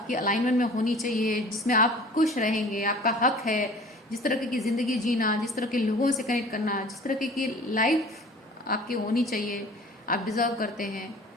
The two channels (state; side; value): normal; both; correlation 0.46